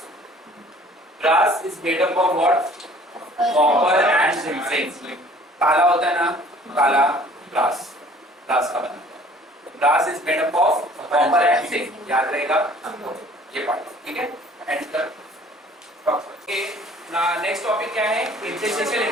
Brass is made up of what? Copper and zinc. काला होता है ना, काला ब्रास का बना। Brass is made up of copper and zinc, याद रहेगा ये पार्ट। ठीक है, एंड कर। नेक्स्ट टॉपिक क्या है? Interstitial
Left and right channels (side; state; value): both; normal; correlation 0.53